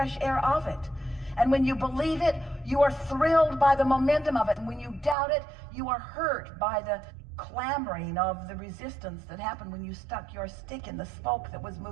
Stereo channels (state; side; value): drops out; left; at 5.2 s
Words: air of it. And when you believe it, you are thrilled by the momentum of it. And when you doubt it, you are hurt by the clamoring of the resistance that happened when you stuck your stick in the spoke that was